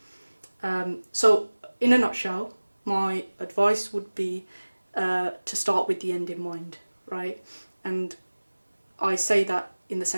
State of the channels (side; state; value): both; inverted; correlation -1.00